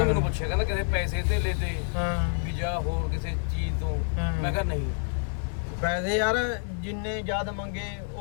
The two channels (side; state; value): right; silent; 59 dB below the other